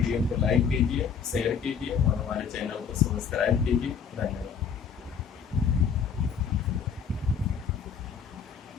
को लाइक कीजिए, शेयर कीजिए और हमारे चैनल को सब्सक्राइब कीजिए। धन्यवाद।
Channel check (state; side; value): quieter; right; 6.9 dB